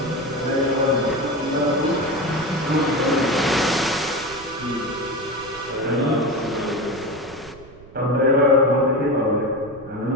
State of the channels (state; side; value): noise; right; rumble, 21 dB below the sound